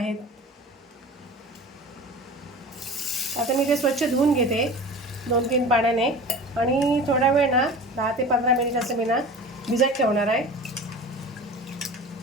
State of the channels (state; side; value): normal; both; correlation 0.37